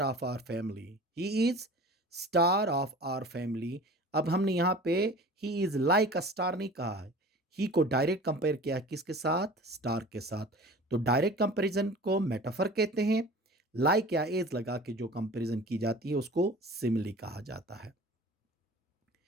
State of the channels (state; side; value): normal; both; correlation 0.41